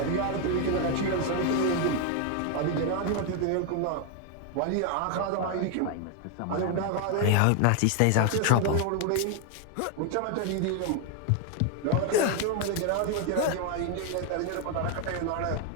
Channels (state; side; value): different; both; correlation 0.01